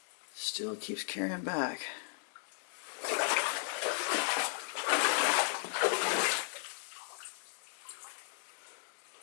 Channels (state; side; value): silent; right; 54 dB below the other